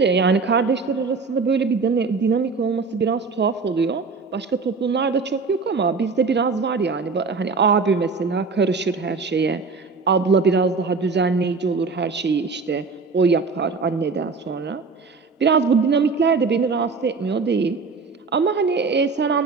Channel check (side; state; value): left; quieter; 4.5 dB